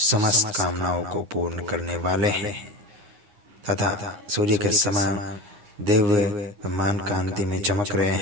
समस्त कामनाओं को पूर्ण करने वाले हैं तथा सूर्य के समान दिव्य ब्रह्मांड कांति में चमक रहे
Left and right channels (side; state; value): left; late; 9.7 ms